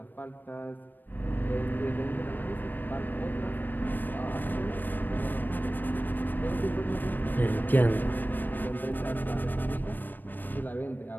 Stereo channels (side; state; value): right; late; 0.091 ms